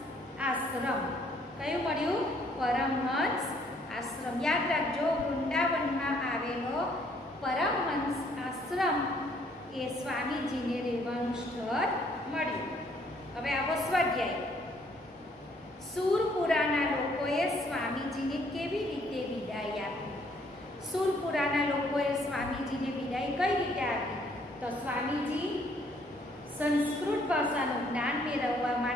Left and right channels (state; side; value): normal; both; correlation 0.65